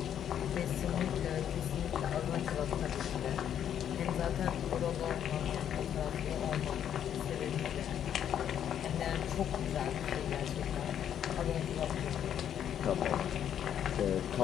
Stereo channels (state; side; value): quieter; right; 9.6 dB